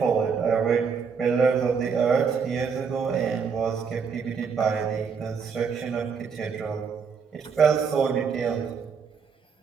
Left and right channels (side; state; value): left; quieter; 6.0 dB